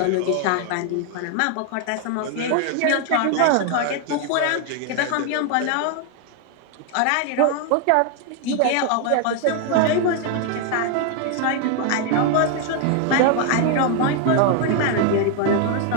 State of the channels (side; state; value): both; different; correlation 0.00